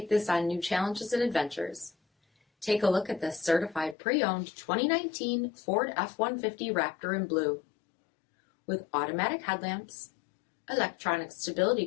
this on new challenges and adventures. Take a look at this certified pre-owned 2019 Ford F-150 Raptor in blue. With automatic headlamps, electronic stability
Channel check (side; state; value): right; drops out; at 4.0 s